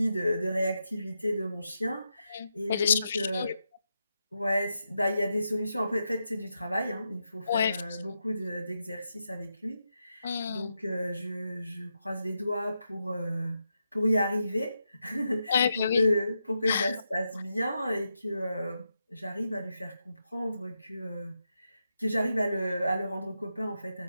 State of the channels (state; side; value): inverted; both; correlation -0.85